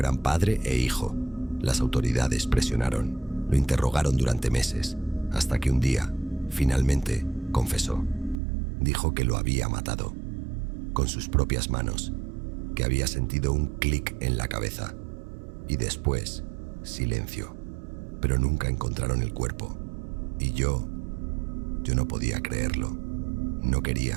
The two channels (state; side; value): drops out; left; at 8.3 s